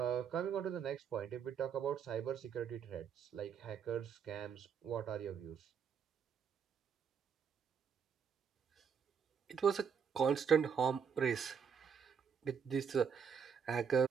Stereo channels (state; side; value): quieter; left; 7.0 dB